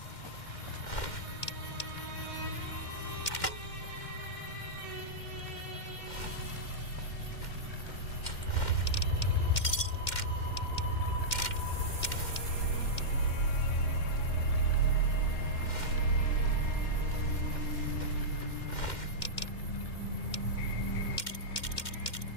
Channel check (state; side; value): late; right; 2.1 ms